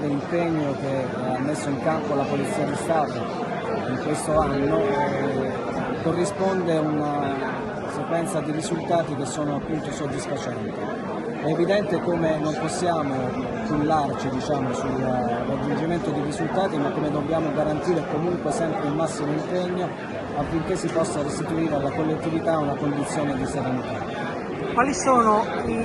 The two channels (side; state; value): both; identical; correlation 1.00